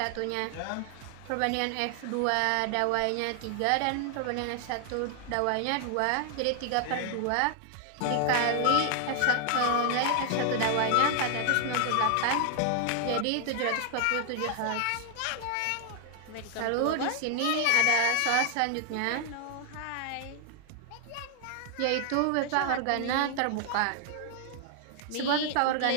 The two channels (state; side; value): different; both; correlation 0.00